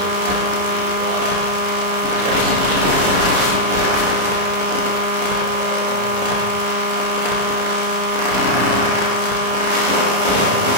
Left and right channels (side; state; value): left; late; 38 ms